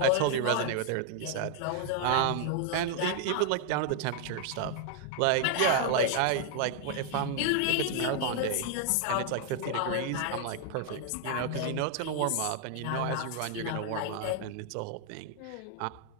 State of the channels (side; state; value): both; different; correlation 0.00